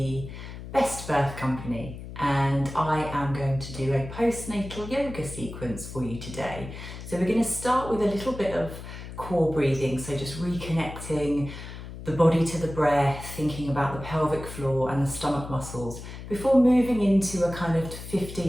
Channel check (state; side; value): noise; left; hum, 11 dB below the sound